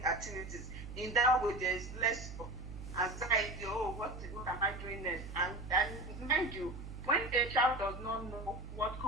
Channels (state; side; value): noise; right; hum, 10 dB below the sound